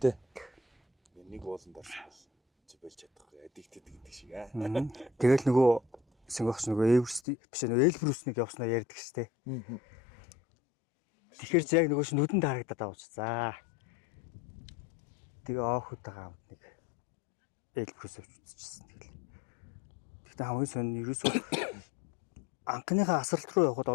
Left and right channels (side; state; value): right; drops out; at 7.2 s